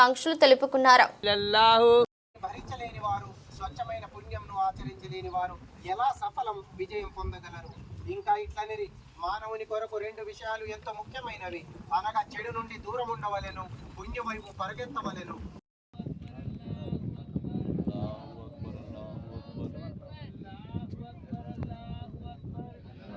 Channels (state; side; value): identical; both; correlation 1.00